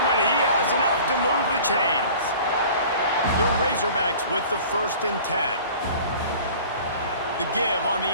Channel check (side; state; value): both; inverted; correlation -0.45